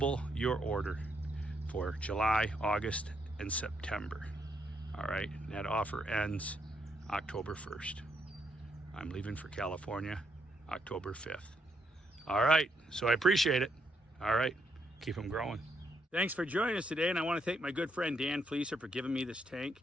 your order for July, August, and September. All right, and that offer ends October 1st. I'm leaving for California October 5th. All right, so I appreciate it. All right, keep them growing. Thanks for joining us today, and I want to thank my good friend Dan Fleeser for giving me this tank.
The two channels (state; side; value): normal; both; correlation 0.76